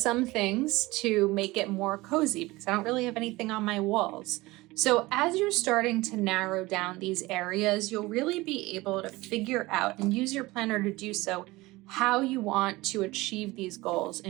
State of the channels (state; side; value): quieter; left; 20.6 dB